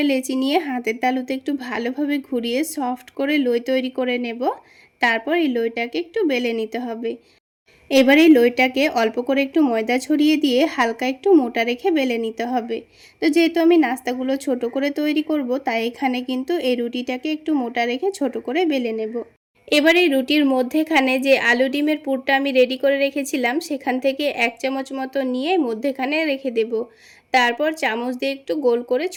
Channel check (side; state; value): both; identical; correlation 1.00